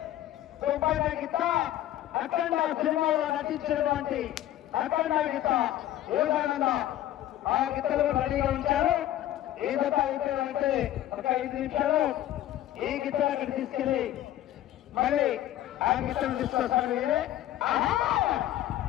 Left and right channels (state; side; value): quieter; right; 13.2 dB